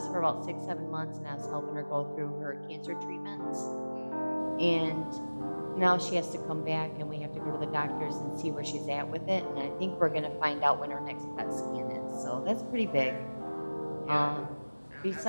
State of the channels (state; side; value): inverted; both; correlation -1.00